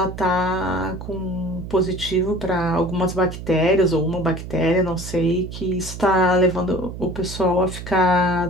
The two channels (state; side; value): noise; right; hum, 10 dB below the sound